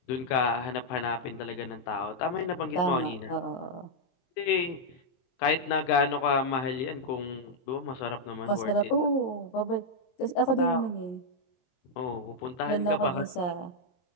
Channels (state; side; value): late; right; 23 ms